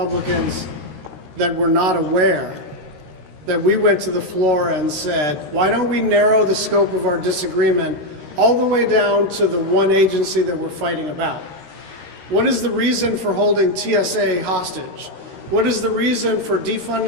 that were not aware that we went to the floor and said, why don't we narrow the scope of our disagreement all the way down to the one agency that we're fighting about? What is the reason for holding TSA hostage? What is the reason for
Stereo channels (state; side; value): late; left; 13 ms